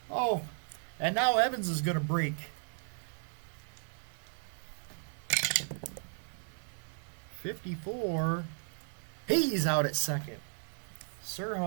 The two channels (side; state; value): left; silent; 54 dB below the other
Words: Oh, and now Evans is going to break. .54. He's out at second.